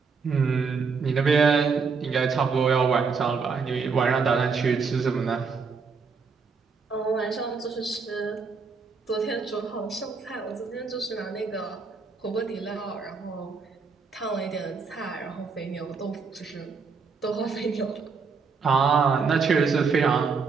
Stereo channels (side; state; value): left; quieter; 5.1 dB